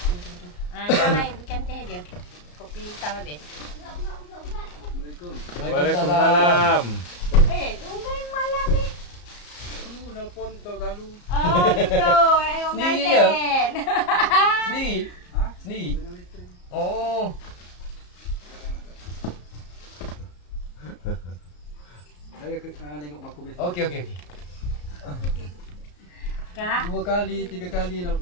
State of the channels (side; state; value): right; late; 34 ms